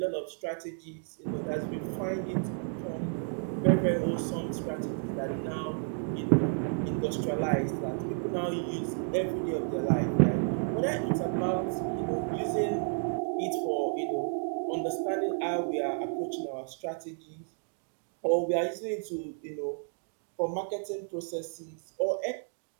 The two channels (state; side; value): silent; left; 57 dB below the other